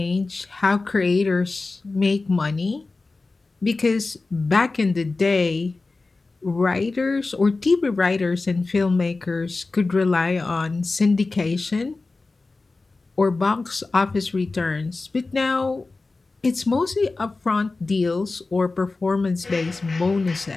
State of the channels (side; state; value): right; quieter; 3.6 dB